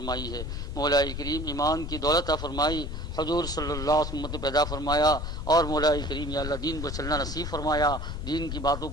ہے۔ مولا کریم ایمان کی دولت عطا فرمائی، حضور صلی اللہ علیہ وسلم پیدا فرمایا، اور مولا کریم یا اللہ دین پر چلنا نصیب فرمایا، دین کی باتوں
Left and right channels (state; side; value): noise; left; rumble, 5 dB below the sound